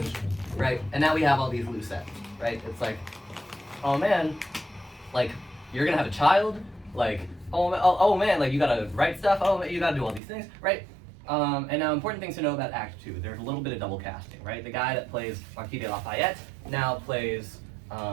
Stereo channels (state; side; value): drops out; left; at 10.2 s